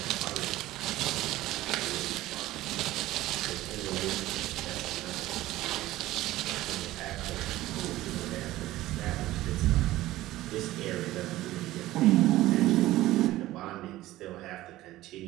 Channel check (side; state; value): left; quieter; 16.2 dB